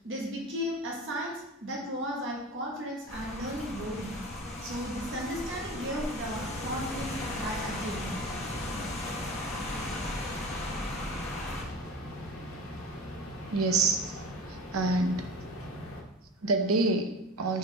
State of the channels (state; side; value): normal; both; correlation 0.34